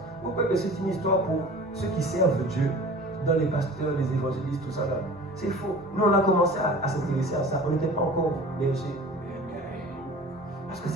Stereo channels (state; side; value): normal; both; correlation 0.42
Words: vous croyez que c'est une histoire pour ceux qui servent Dieu, dans les pasteurs, les évangélistes, tout ça là. C'est faux. Nous, on a commencé à s'intéresser à ça. On n'était pas encore bergers. Parce que